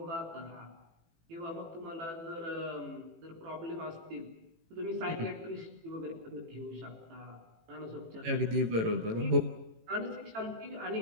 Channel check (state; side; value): late; left; 18 ms